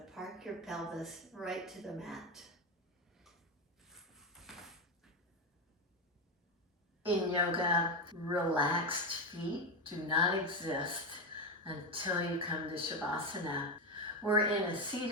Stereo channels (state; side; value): normal; both; correlation 0.12